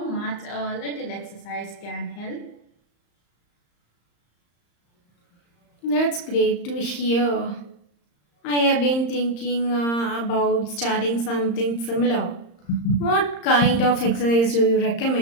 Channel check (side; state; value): right; late; 35 ms